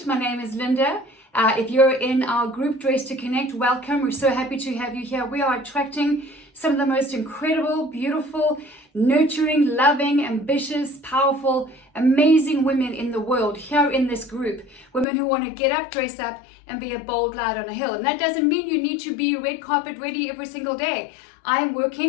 my name is Linda. If you're in our group Dress to Connect, welcome. We're so happy to have you here. We are attracting some of the most incredible, beautiful, nurturing, loving, ambitious, powerful, amazing women in the world here in this group. Women who want to get up, dress up, and be a bold light on a hill. And that doesn't mean you need to be red carpet ready every single day. I'm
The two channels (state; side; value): drops out; right; at 15.1 s